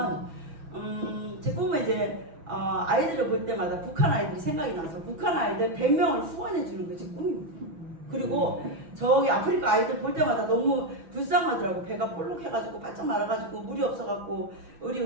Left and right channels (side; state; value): left; late; 6.1 ms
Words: 이제 아이들을 볼 때마다 북한 아이들이 생각이 나서 북한 아이들 100명을 후원해 주는 게 제 꿈입니다. 그리고 저기 아프리카 아이들 볼 때마다 너무 불쌍하더라고. 배가 볼록해가지고 바짝 말아가지고 물이 없어갖고 우리